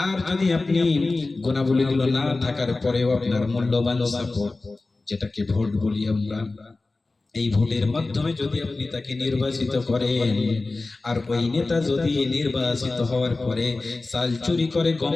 আর যদি আপনি গুণাবলীগুলো না থাকার পরেও আপনার মূল্যবান সাপোর্ট, যেটাকে ভোট বলি আমরা, এই ভোটের মাধ্যমে যদি আপনি তাকে নির্বাচিত করেন, আর ওই নেতা যদি নির্বাচিত হওয়ার পরে চাল চুরি করে, গম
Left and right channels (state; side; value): quieter; right; 3.4 dB